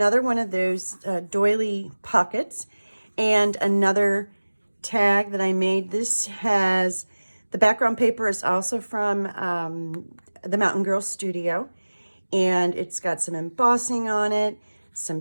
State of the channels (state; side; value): inverted; both; correlation -1.00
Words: one of those doily pockets and another tag that I made. This has, the background paper is also from the Mountain Girl Studio, and it's got some embossing on it,